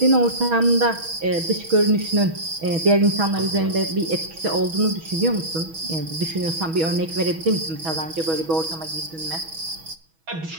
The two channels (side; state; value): left; late; 6.2 ms